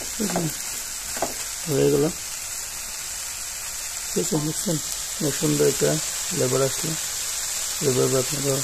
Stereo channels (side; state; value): both; identical; correlation 1.00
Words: হয়ে গেল, ঠিক আছে। বুঝছেন সুন্দর একটা ফ্লেভার আসলো, এভাবে আপনারা